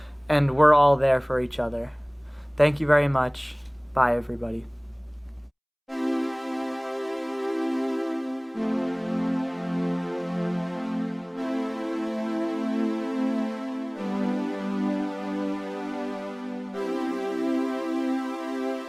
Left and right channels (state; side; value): identical; both; correlation 1.00